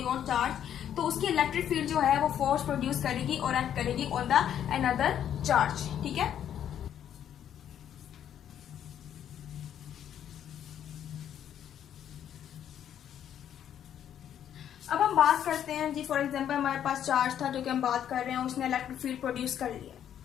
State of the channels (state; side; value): quieter; right; 9.8 dB